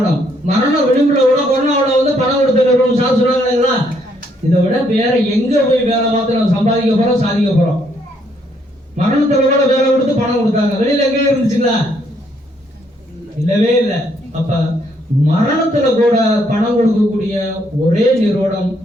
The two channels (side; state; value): both; normal; correlation 0.71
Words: மரண விளிம்புல கூட கொரோனாவில் வந்து பணம் கொடுத்த நிறுவனம் சார் சொல்றாங்களா? இதை விட வேற எங்க போய் வேலை பார்த்து நம்ம சம்பாதிக்க போறோம், சாதிக்க போறோம்? மரணத்துல கூட வேலை கொடுத்து பணம் கொடுத்தாங்க. வெளியில எங்கே இருந்துச்சுங்களா? இல்லவே இல்லை. அப்ப மரணத்துல கூட பணம் கொடுக்கக்கூடிய ஒரே நிறுவனம்